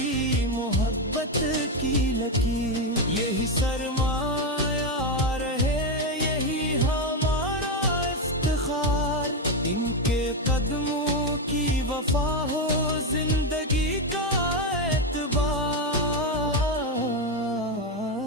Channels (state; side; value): normal; both; correlation 0.09